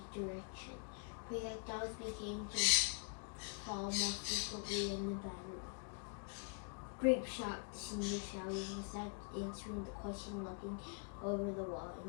direction. Projectiles began to fall more frequently in the battery. Grape shot, the senior shouted without answering the question, looking over the wall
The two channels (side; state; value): right; quieter; 39.7 dB